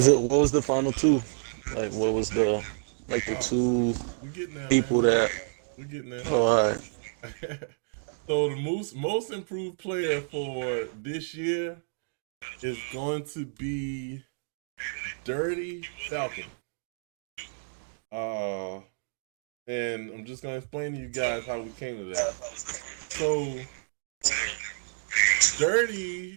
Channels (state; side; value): silent; left; digital silence